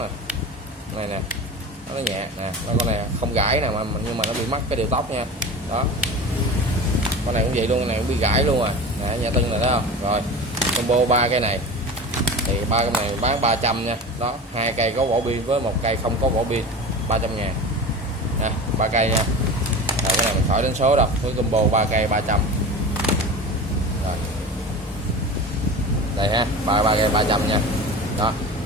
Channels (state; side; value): normal; both; correlation 0.32